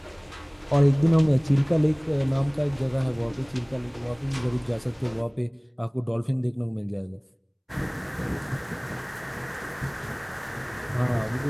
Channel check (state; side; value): identical; both; correlation 1.00